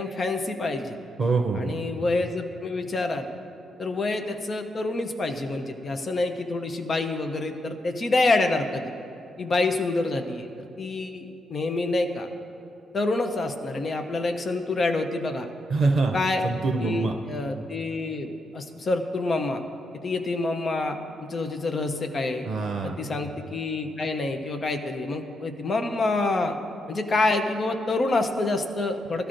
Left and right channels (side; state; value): both; normal; correlation 0.81